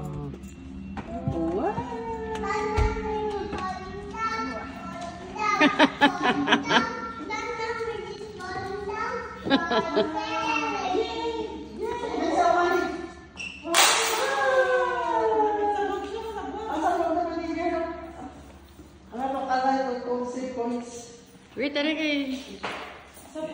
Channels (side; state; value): both; identical; correlation 1.00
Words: Wow. Wait, tara kayo.